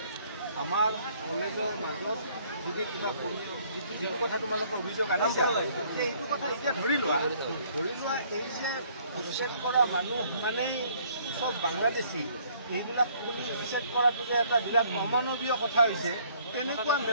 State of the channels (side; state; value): both; inverted; correlation -0.61